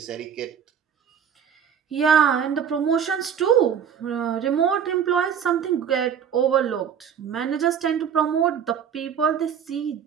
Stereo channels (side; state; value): left; quieter; 8.0 dB